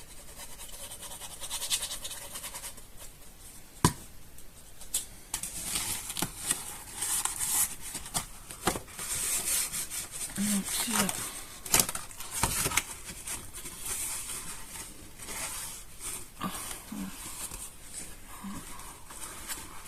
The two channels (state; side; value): identical; both; correlation 1.00